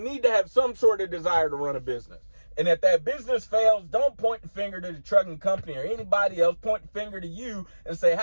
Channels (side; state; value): both; inverted; correlation -1.00